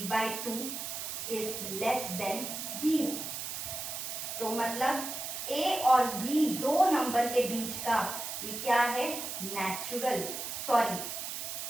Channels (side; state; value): right; noise; hiss, 5 dB below the sound